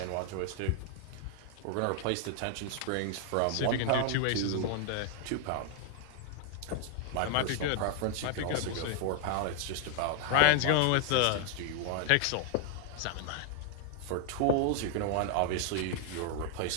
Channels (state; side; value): different; both; correlation 0.00